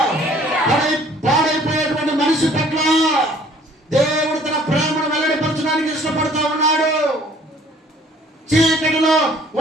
పాడైపోయేటువంటి మనిషి పట్ల దేవుడు తన ప్రేమను వెల్లడిపరచడానికి ఇష్టపడుతూ ఉన్నాడు. చీకటిలో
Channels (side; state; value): both; normal; correlation 0.56